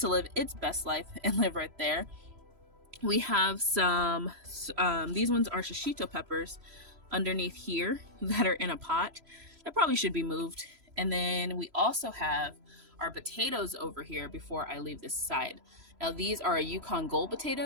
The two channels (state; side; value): late; left; 3.0 ms